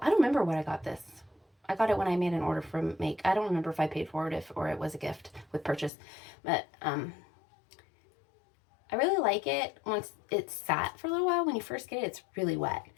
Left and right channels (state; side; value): drops out; right; at 5.9 s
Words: I don't remember what I got this. I got it when I made an order from Make. I don't remember if I paid for it or it was a gift with purchase. But I really like it once it's sat for a little while. When you first get it, it's really wet.